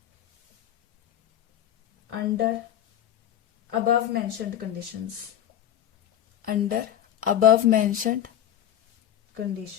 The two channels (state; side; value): quieter; right; 10.7 dB